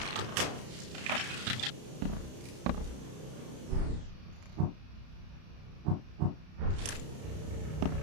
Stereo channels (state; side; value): late; left; 32 ms